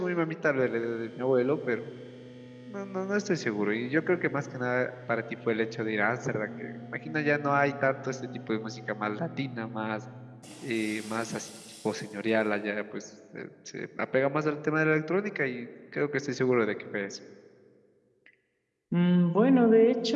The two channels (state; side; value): identical; both; correlation 1.00